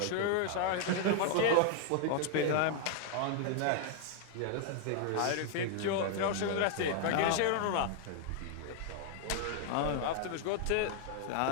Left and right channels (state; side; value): different; both; correlation 0.00